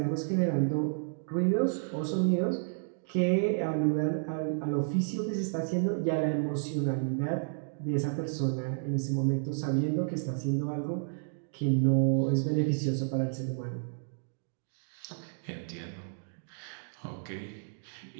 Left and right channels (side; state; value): left; silent; digital silence